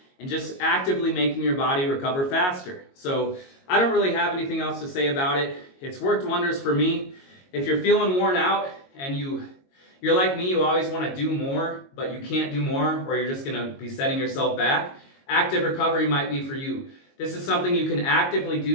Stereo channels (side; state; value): right; late; 22 ms